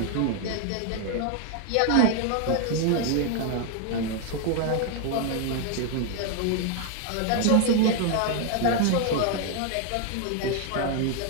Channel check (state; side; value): different; both; correlation 0.00